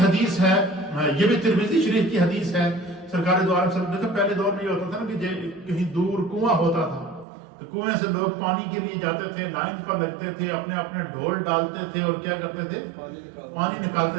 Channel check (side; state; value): left; drops out; at 7.2 s